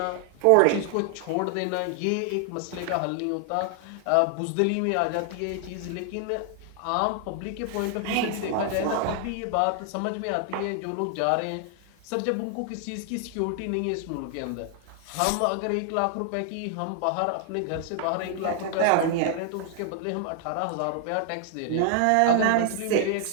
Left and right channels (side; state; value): both; different; correlation 0.00